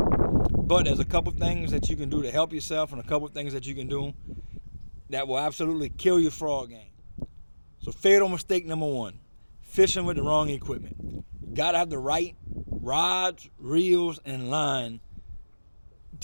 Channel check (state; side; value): inverted; both; correlation -1.00